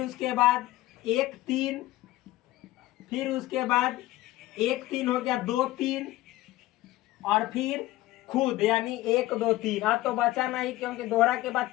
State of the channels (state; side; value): quieter; right; 16.7 dB